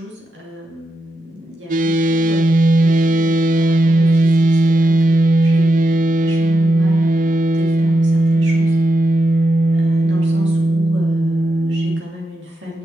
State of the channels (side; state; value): both; normal; correlation 0.86